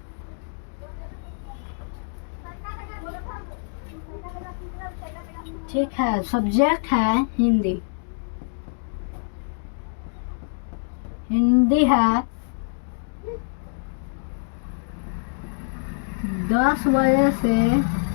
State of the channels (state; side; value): silent; right; digital silence